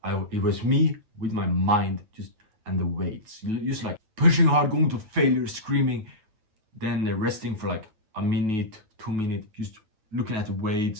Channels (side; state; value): left; late; 9.2 ms